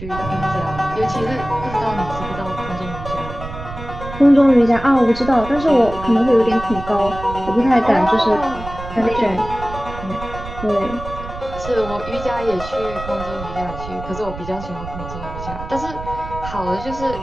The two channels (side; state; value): right; noise; rumble, 11 dB below the sound